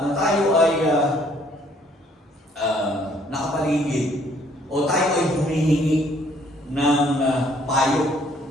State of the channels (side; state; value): both; normal; correlation 0.63